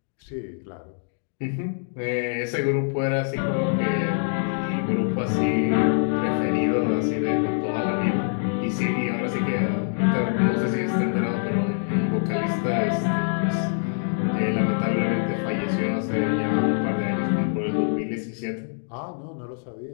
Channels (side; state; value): right; silent; digital silence